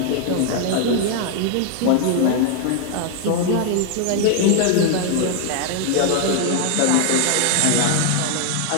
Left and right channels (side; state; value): both; different; correlation 0.00